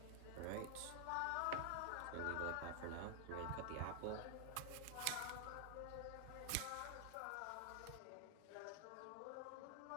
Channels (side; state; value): both; different; correlation 0.00